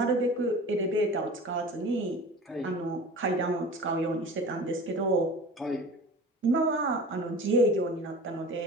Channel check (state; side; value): normal; both; correlation 0.38